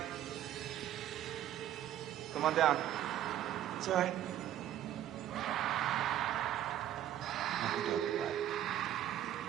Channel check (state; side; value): quieter; left; 11.8 dB